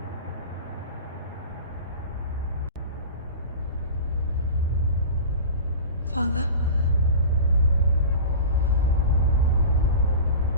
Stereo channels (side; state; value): both; inverted; correlation -0.33